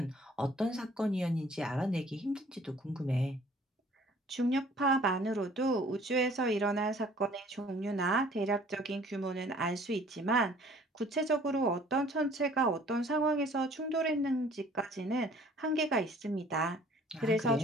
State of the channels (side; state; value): both; normal; correlation 0.54